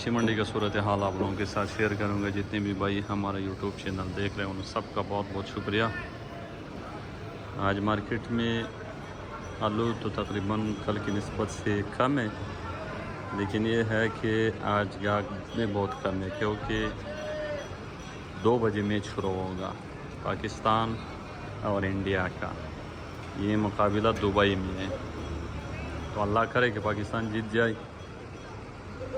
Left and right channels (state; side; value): identical; both; correlation 1.00